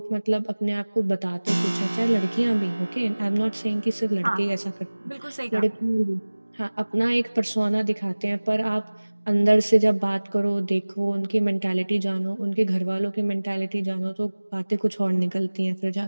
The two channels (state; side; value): inverted; both; correlation -1.00